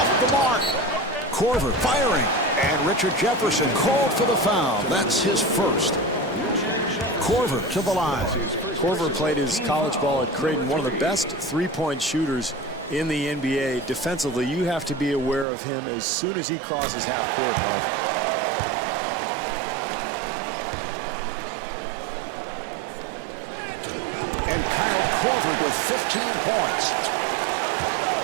the mark. Korver firing, and Richard Jefferson called for the foul. That's his first. Korver to the line. Korver played his college ball at Creighton, one of the best three-point shooters in the NBA. Defensively, you have to be aware of him as soon as he crosses half court, Marv. And Kyle Korver with 15 points.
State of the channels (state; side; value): drops out; left; at 15.5 s